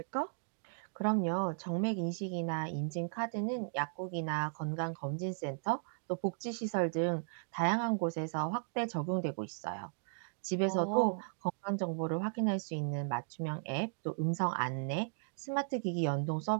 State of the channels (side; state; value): left; silent; digital silence